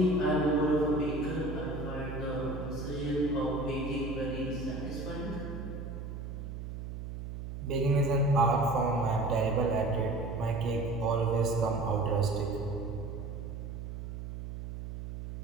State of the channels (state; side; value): noise; right; hum, 8 dB below the sound